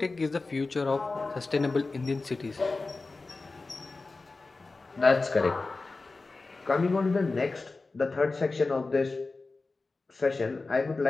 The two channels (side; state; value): right; quieter; 3.6 dB